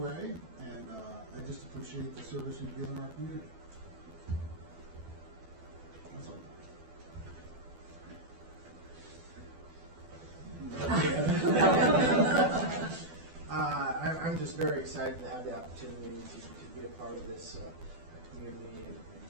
and I just appreciate the service you've given our community. That's all. I'm just very excited to have the opportunity to be a part of this community and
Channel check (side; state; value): left; late; 12 ms